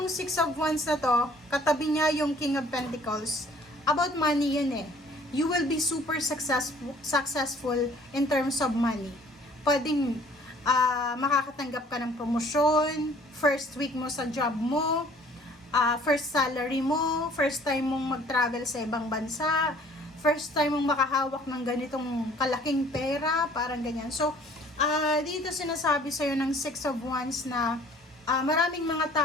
6 of Wands na to, katabi niya yung King of Pentacles. About money yun eh. You will be super successful in terms of money. Pwedeng makakatanggap ka ng promosyon, first week mo sa job mo, first salary mo, first time mong mag-travel sa ibang bansa, first time mong makahawak ng ganitong kalaking pera, parang ganyan. So, Dito sinasabi sa'yo ng Six of Wands na maraming mga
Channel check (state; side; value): normal; both; correlation 0.55